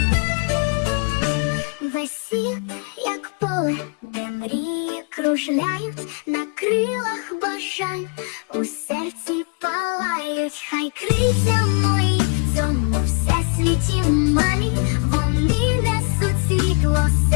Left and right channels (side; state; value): right; quieter; 37.8 dB